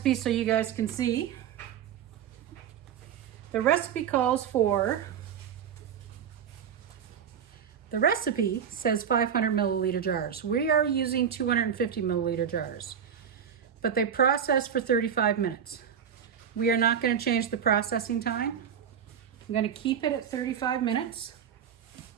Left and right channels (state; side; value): quieter; left; 8.2 dB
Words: so you guys can see. The recipe calls for, the recipe says 500 milliliter jars. We are using 250 milliliter jars, but they process for 35 minutes. We are not going to change the processing time. I'm going to keep it at 35 minutes.